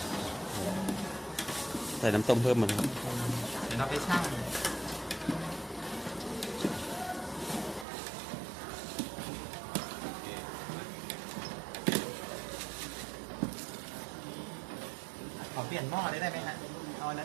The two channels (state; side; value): drops out; left; at 7.9 s